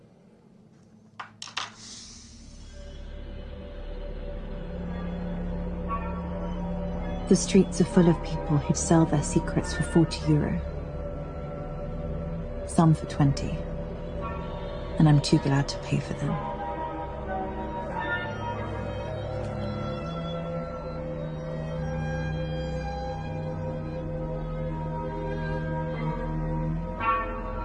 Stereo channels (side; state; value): both; identical; correlation 1.00